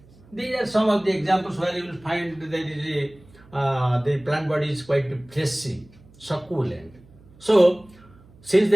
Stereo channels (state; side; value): noise; right; hum, 26 dB below the sound